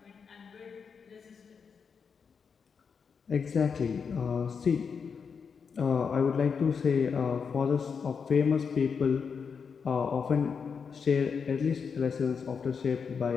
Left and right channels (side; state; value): right; quieter; 6.0 dB